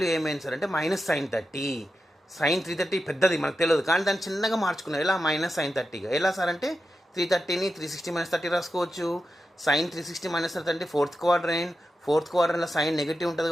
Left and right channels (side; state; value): both; normal; correlation 0.90